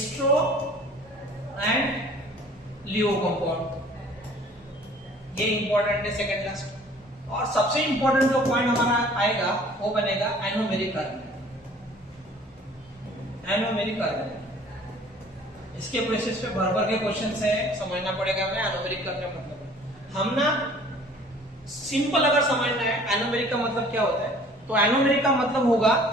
and Leo compound, ये इंपॉर्टेंट है सेकेंड लास्ट। और सबसे इंपॉर्टेंट जो पॉइंट हमारा आएगा वो बनेगा एनोमेरिक कार्बन। एनोमेरिक कार्बन, इसके बेसिस पे भर भर के क्वेश्चन है, समझना पड़ेगा हमें एनोमेरिक का क्या मतलब है। हम ना सिंपल अगर समझना है एनोमेरिक का मतलब क्या होता है, तो एनोमेरिक का मतलब होगा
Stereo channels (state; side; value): normal; both; correlation 0.52